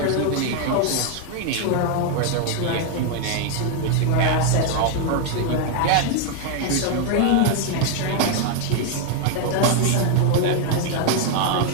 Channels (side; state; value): both; different; correlation 0.00